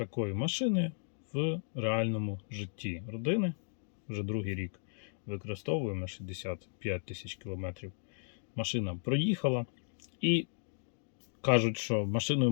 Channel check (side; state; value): right; silent; digital silence